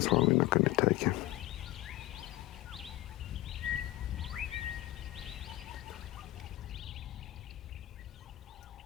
why we're not going to take him.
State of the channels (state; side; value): quieter; right; 16.9 dB